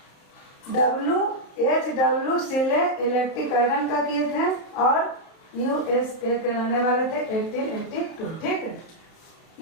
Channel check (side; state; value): right; late; 32 ms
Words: H.W. सीले इलेक्ट्रिक आयरन का किए थे और USA के रहने वाले थे 1882, ठीक है।